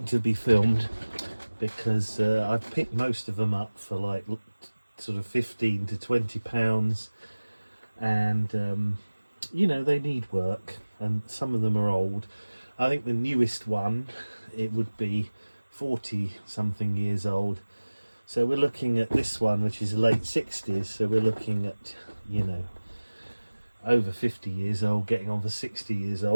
to be filmed, because I've picked most of them up for like sort of 15 to 20 pounds, and you know, they need work, and some of them are old. I think the newest one, it would be 40 something years old, so we're looking at this one, which is late 60s, so we're looking at, you know, over 50 years old, getting on for 60 years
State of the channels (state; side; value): inverted; both; correlation -1.00